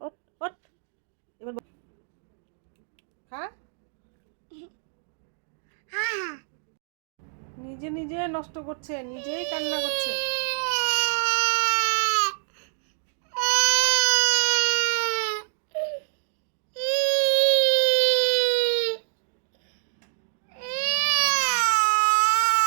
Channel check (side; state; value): left; silent; digital silence